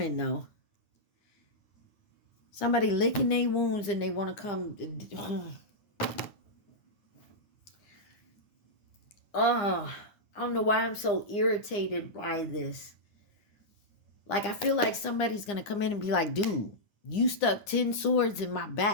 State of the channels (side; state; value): right; late; 9.8 ms